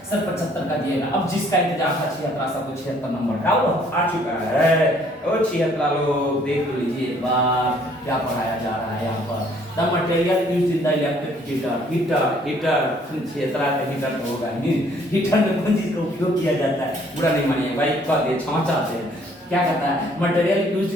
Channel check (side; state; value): both; normal; correlation 0.61